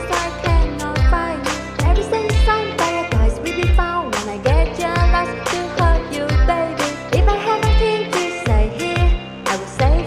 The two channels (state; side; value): identical; both; correlation 1.00